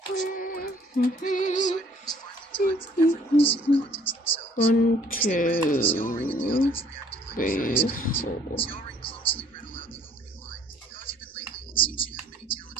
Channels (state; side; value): normal; both; correlation 0.59